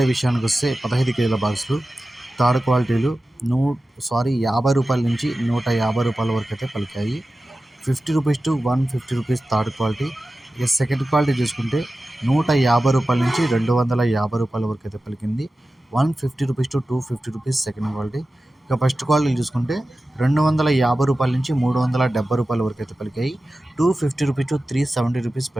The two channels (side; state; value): both; normal; correlation 0.94